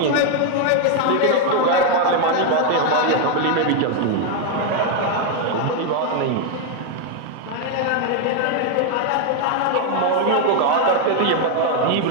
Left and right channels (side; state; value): both; different; correlation 0.01